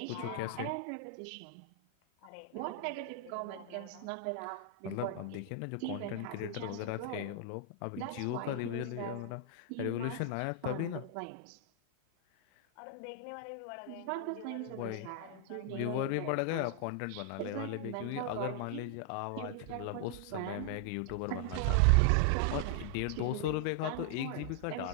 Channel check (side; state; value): both; different; correlation -0.01